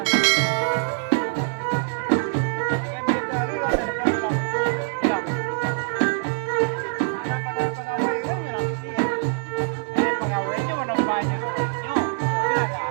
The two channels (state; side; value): silent; left; digital silence